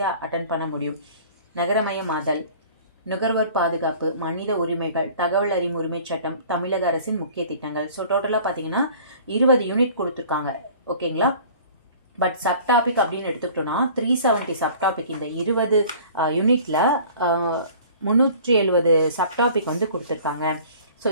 அட்டன் பண்ண முடியும். நகரமயமாதல், நுகர்வோர் பாதுகாப்பு, மனித உரிமைகள், தகவல் அறியும் உரிமை சட்டம், தமிழக அரசின் முக்கிய திட்டங்கள். ஸோ டோட்டலாக பார்த்தீங்கன்னா 20 யூனிட் கொடுத்துருக்காங்க. ஓகேங்களா? பட் சப்டாபிக் அப்படின்னு எடுத்துக்கிட்டோம்னா 370 சப்டாபிக். இந்த 20 யூனிட்ல 370 சப்டாபிக் வந்து கொடுத்துருக்காங்க. ஸோ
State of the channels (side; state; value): both; inverted; correlation -0.48